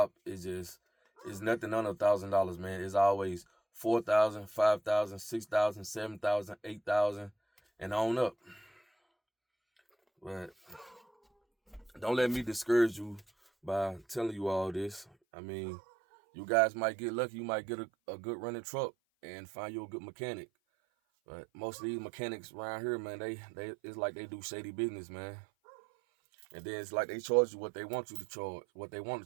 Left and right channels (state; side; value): drops out; left; at 15.1 s